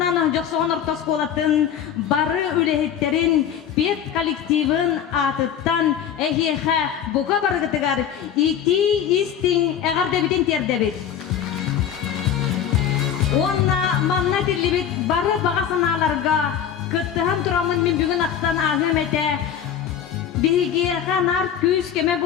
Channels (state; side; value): quieter; right; 8.9 dB